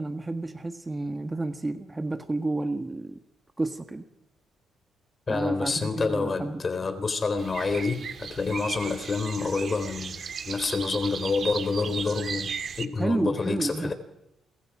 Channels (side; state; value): both; normal; correlation 0.89